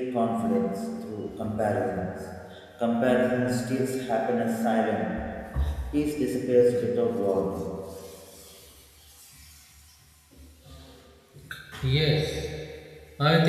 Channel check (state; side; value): identical; both; correlation 1.00